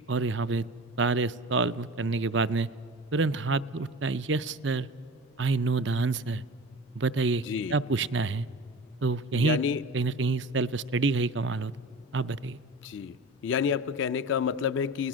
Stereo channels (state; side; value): normal; both; correlation 0.34